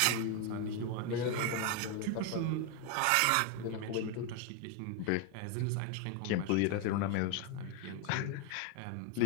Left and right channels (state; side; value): different; both; correlation 0.01